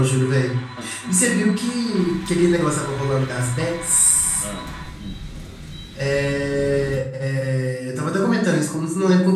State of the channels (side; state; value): both; identical; correlation 1.00